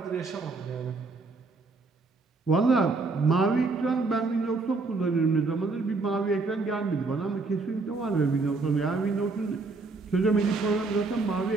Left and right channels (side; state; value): left; quieter; 3.8 dB